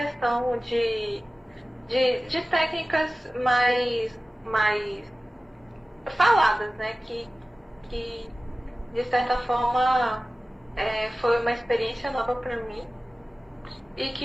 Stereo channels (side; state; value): both; normal; correlation 0.97